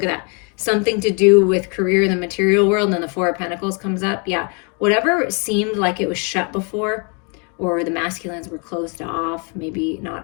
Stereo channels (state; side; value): quieter; right; 35.8 dB